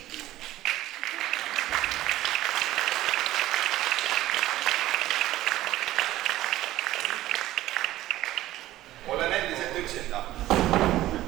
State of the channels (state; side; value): quieter; left; 15.2 dB